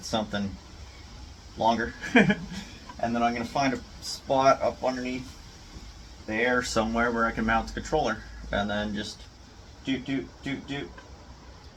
something longer. And then I'm going to find a spot up underneath there somewhere where I can mount the controller. And then just doot.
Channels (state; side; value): identical; both; correlation 1.00